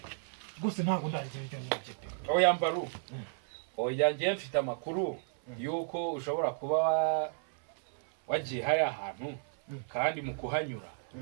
gusa ntabwo ndagira ibyo nibye oya Mbaru oya ngiye mfite amakuru yuko ushobora kuba wagiye hariya ahantu kandi mu kuhanyura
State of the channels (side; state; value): left; silent; 56 dB below the other